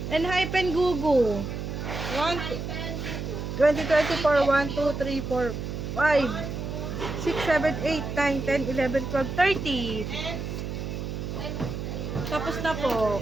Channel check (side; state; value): right; noise; hum, 5 dB below the sound